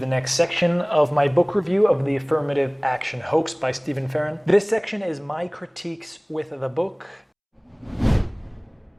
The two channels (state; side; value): identical; both; correlation 1.00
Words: next section of my book review of the Affirmative Action Hoax by Farron. This section is my critiques with the book.